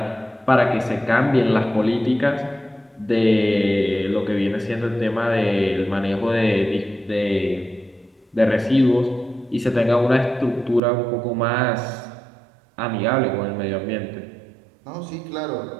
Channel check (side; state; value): left; drops out; at 10.8 s